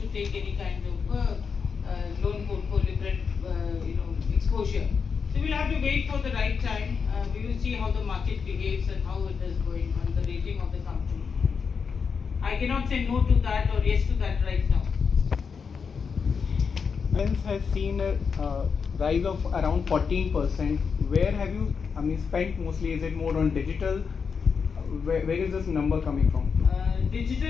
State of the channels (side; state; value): right; quieter; 5.8 dB